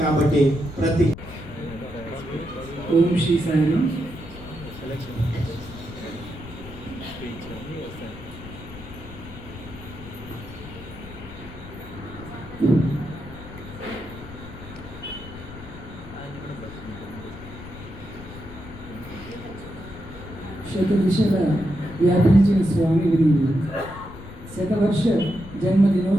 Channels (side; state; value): left; noise; rumble, 14 dB below the sound